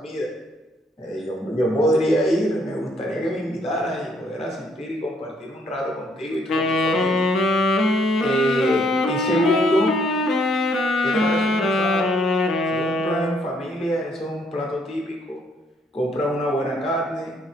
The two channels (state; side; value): normal; both; correlation 0.68